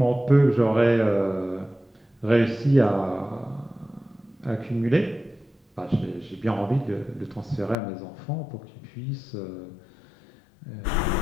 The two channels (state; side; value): drops out; right; at 7.8 s